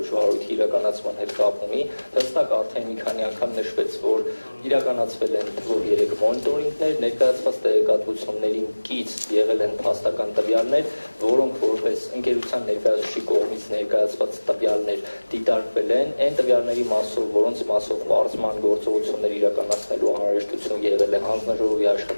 վարույթի իրականացման հետ կապ ունի։ Հստակ արդեն մի քանի անգամ նշվեց, որ իրականացվել են թվով 3 մոնիտորինգներ, ներկայացված տեղեկատվություններին կից եղել են փաստական տվյալներ, որոնք որպես ընկերության ներկայացուցիչի կողմից ներկայացված տվյալներ դիտարկվել են, այն տվյալների մասով, որոնց մասով պարզման գործողություններ իրականացնելու անհրաժեշտություն եղել է, հանձնաժողովի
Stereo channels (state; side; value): inverted; both; correlation -1.00